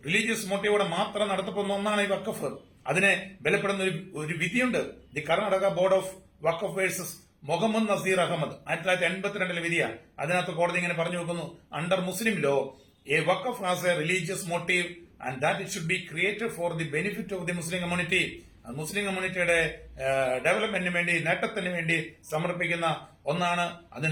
റിലീജിയസ് മോട്ടീവോടെ മാത്രം നടത്തപ്പെടുന്ന ഒന്നാണ് ഈ വഖഫ്. അതിനെ ബലപ്പെടുന്ന ഒരു വിധിയുണ്ട്. The Karnataka board of waqf versus Muhammad Nazeer Ahmed 1982 വിധിയാണ്. അതിനകത്ത് കോടതി ഇങ്ങനെ പറഞ്ഞു വെക്കുന്നു: under Muslim law a waqf has a religious motive and that it should be created for the benefit of the Muslim community. Muslim കമ്മ്യൂണിറ്റിയുടെ ഡെവലപ്മെന്റിന് വേണ്ടി, നേട്ടത്തിന് വേണ്ടി സമർപ്പിക്കുന്ന ഒന്നാണ്.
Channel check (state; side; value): identical; both; correlation 1.00